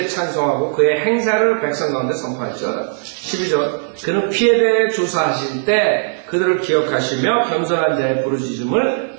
찬송하고 그의 행사를 백성 가운데 선포할지어다. 12절 그는 피에 대해 조사하실 때 그들을 기억하시며 겸손한 자의 부르짖음을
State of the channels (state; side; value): silent; left; digital silence